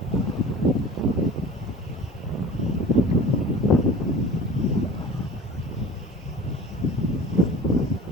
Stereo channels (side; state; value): both; normal; correlation 0.41